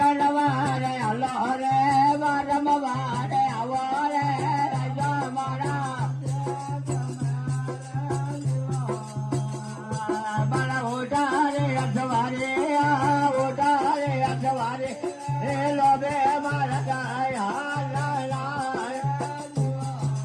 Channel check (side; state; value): both; identical; correlation 1.00